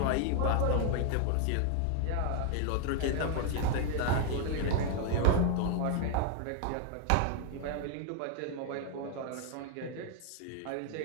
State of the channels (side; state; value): both; different; correlation 0.00